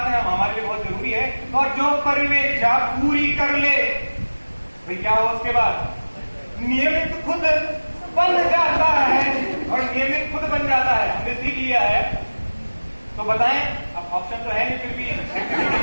है हमारे लिए बहुत जरूरी है। और जो परिवेक्षा पूरी कर ले, भाई क्या हो उसके बाद? नियमित खुद बन जाता है और नियमित खुद बन जाता है। हमने सीख लिया है। तो बताएं, अब ऑप्शन तो है नहीं, फिर भी एक्टिविटी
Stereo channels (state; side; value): inverted; both; correlation -1.00